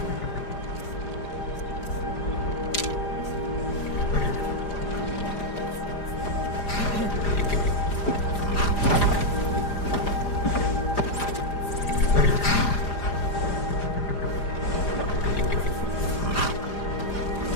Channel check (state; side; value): late; right; 4.9 ms